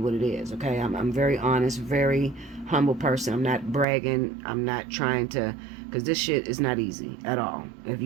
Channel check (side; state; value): left; drops out; at 3.9 s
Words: what it is. Okay. I'm very honest, very humble person. I'm not bragging. I'm not trying to, because this shit is not easy at all. If